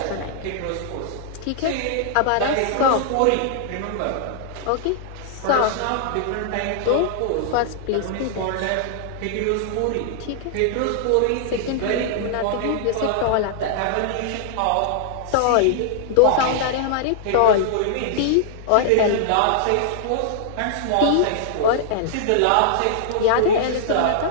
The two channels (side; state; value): both; different; correlation -0.01